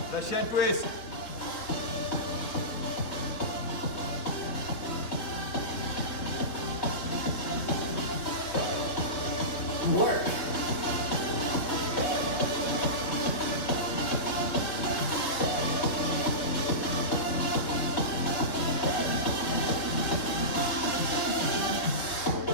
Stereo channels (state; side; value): late; right; 3.7 ms